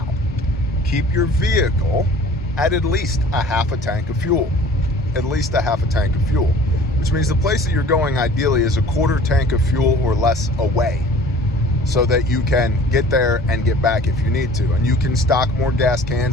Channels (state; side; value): normal; both; correlation 0.48